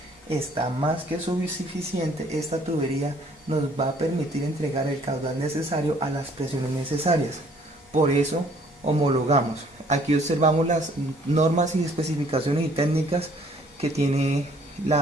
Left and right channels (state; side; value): normal; both; correlation 0.60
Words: está más que suficiente. Esta tubería nos va a permitir entregar el caudal necesario a las presiones necesarias. Por eso homologamos. Aquí observamos las normas y especificaciones y técnicas que tiene